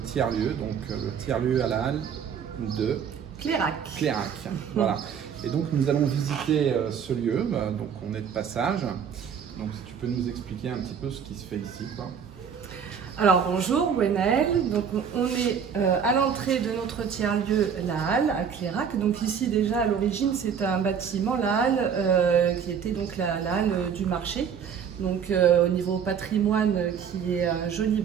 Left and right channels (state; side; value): quieter; left; 7.3 dB